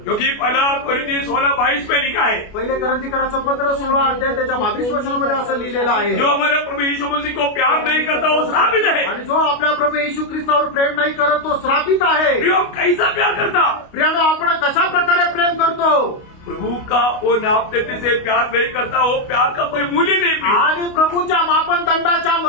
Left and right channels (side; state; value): right; late; 29 ms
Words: क्योंकि पहला कोरिन्थी 16:22 में लिखा है, पहिले करंतीकराचं पत्र 16 अध्याय त्याच्या 22 वचनामध्ये असं लिहिलेलं आहे, जो हमारे प्रभु यीशु मसीह को प्यार नहीं करता वो श्रापित है। आणि जो आपल्या प्रभू येशू ख्रिस्तावर प्रेम नाही करत तो श्रापित आहे. प्रियो, कैसा प्यार करता? प्रियांनो, आपण कशा प्रकारे प्रेम करतो? प्रभु का वो नापते से प्यार नहीं करता, वो प्यार का कोई मूल्य नहीं प्रिय। आणि प्रभूच्या मापनदंडाच्या